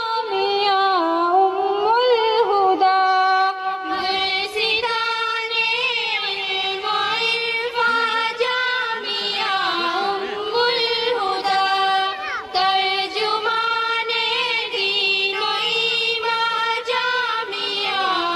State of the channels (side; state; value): both; identical; correlation 1.00